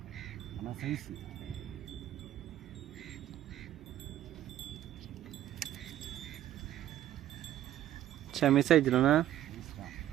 ஆனால் சைஸு சரி மிஸ் ஆயிடுச்சுலண்ணா. சைஸ் தான்.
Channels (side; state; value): left; quieter; 12.5 dB